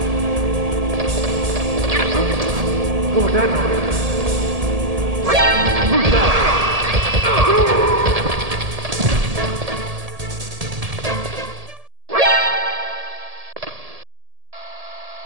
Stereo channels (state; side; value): late; left; 1.7 ms